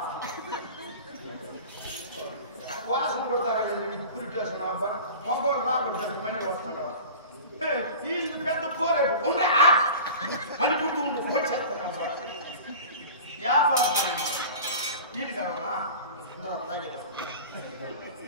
వాసన కొడతారా పురిటేసిన మగవాడు రాబట్టు మనీ వస్తున్నావు ఈ పెద్ద కోరే ఉండే అని గుర్తు ఉండు వచ్చేస్తాను వ్యాపారం ఇది కావాలా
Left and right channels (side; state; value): both; inverted; correlation -0.37